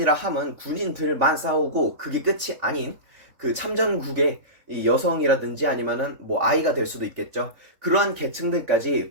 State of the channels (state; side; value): late; left; 3.8 ms